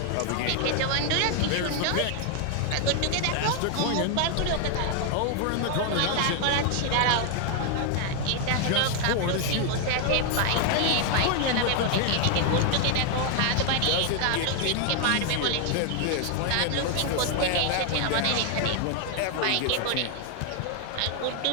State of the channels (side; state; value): both; different; correlation 0.00